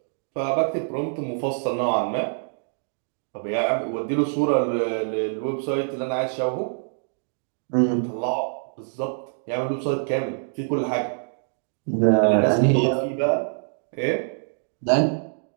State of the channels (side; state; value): left; silent; digital silence